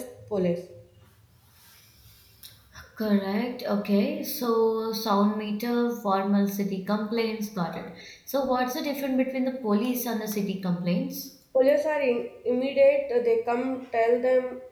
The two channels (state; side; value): identical; both; correlation 1.00